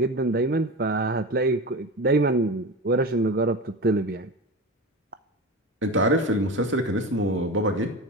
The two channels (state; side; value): normal; both; correlation 0.26